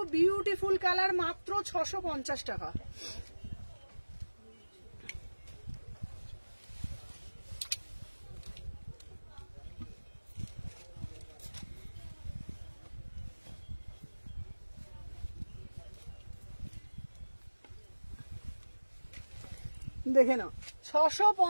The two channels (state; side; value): inverted; both; correlation -1.00